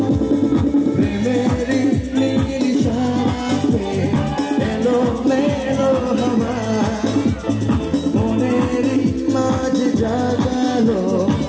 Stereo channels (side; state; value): both; identical; correlation 1.00